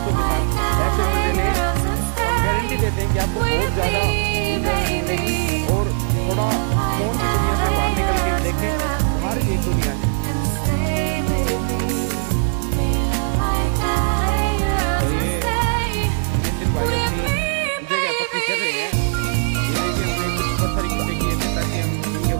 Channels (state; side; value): silent; left; 55 dB below the other